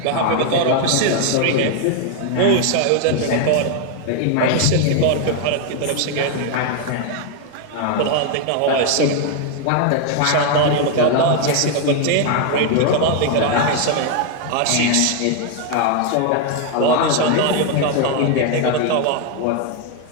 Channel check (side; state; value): both; different; correlation 0.01